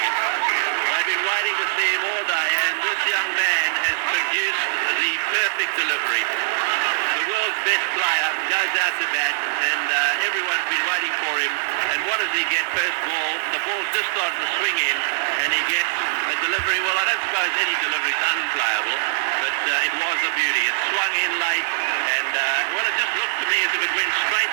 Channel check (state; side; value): silent; left; digital silence